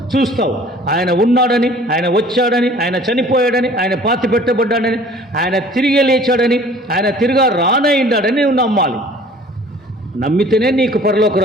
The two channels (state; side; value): normal; both; correlation 0.50